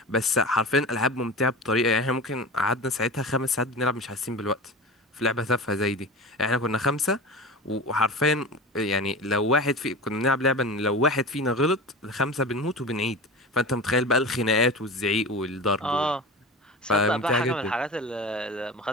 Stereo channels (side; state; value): both; normal; correlation 0.31